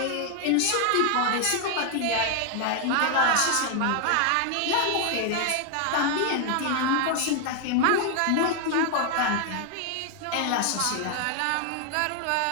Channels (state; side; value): different; both; correlation 0.00